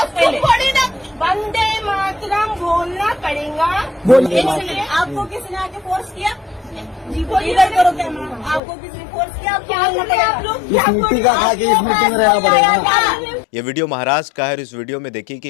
वंदे मातरम बोलना पड़ेगा। इसलिए आपको किसने आके फोर्स किया? जी बोलिए, करो क्या? आपको किसने फोर्स किया? आप लोग ये वीडियो महाराष्ट्र का है और इस वीडियो में देखिए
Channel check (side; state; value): right; drops out; at 8.6 s